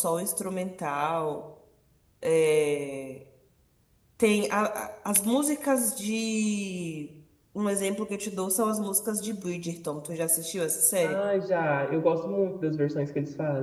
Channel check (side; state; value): both; identical; correlation 1.00